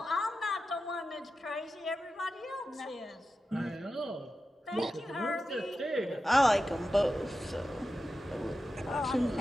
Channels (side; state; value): both; normal; correlation 0.92